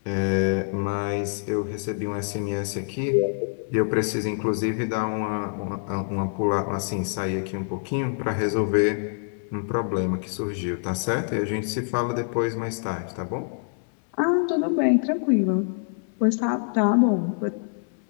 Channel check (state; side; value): silent; right; 61 dB below the other